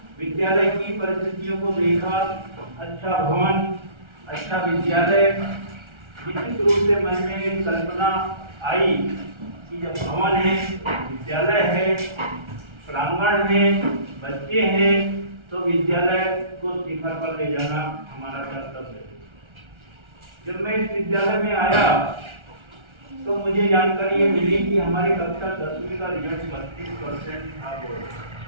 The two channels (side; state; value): left; late; 1.3 ms